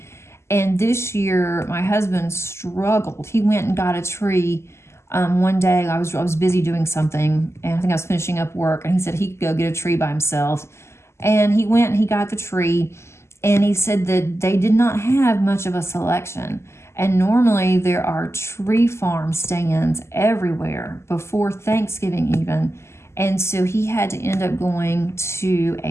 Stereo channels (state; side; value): late; right; 0.13 ms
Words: And this year, my husband struggled. He went and got a tree one day. I was busy doing something, and I think I was finishing up work, and he said he could go get a tree by himself. And he went and he got the tree, and he said that they did not have much of a selection. And normally there are tree farm stands everywhere before Thanksgiving even. And so he had to end up going to